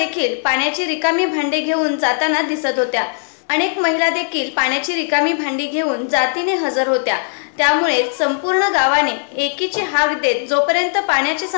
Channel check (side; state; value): right; silent; 63 dB below the other